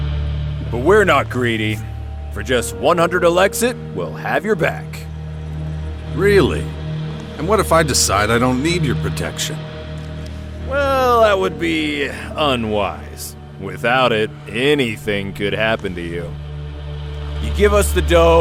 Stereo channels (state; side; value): identical; both; correlation 1.00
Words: But we're not greedy. For just 100 Elexit, we'll have your back. Really? And what if I decide I don't need your protection? Well, that would be unwise. Without it, anything could happen to you. You give us the